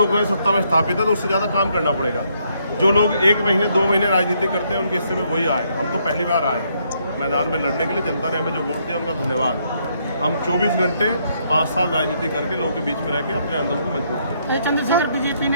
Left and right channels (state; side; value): inverted; both; correlation -0.73